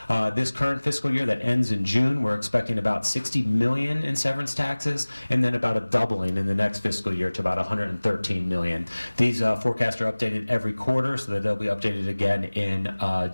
This current fiscal year that ends in June, we're expecting about 60 million in severance taxes, and then about a doubling in the next fiscal year to about 113 million. These forecasts are updated every quarter, so that they'll be updated again in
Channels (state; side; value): inverted; both; correlation -1.00